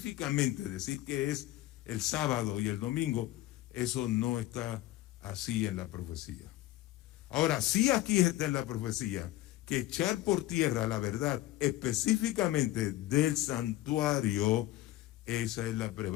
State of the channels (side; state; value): right; quieter; 15.6 dB